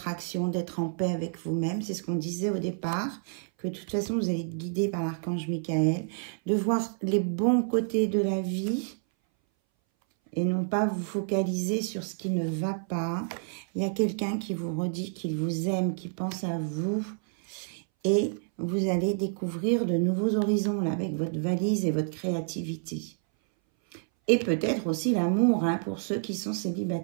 d'être en paix avec vous-même. C'est ce qu'on disait au départ, que de toute façon, vous allez être guidé par l'archange Michael. De voir les bons côtés de la vie et non pas vous focaliser sur ce qui ne va pas. Il y a quelqu'un qui vous redit qu'il vous aime, qui pense à vous. Et vous allez découvrir de nouveaux horizons là, avec votre valise et votre créativité. Et peut-être aussi l'amour, hein, pour ceux qui sont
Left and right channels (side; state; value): left; silent; 59 dB below the other